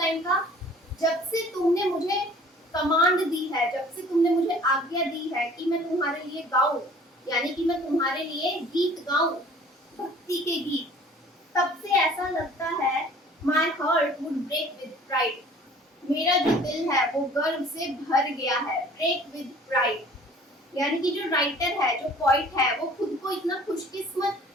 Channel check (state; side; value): normal; both; correlation 0.50